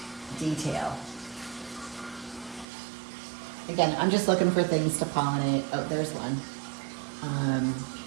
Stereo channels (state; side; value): drops out; left; at 2.7 s